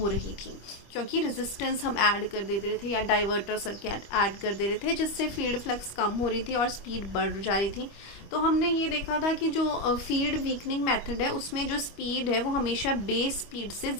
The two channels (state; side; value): late; right; 25 ms